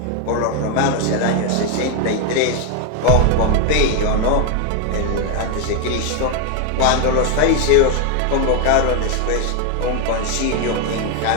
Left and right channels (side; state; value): both; different; correlation 0.01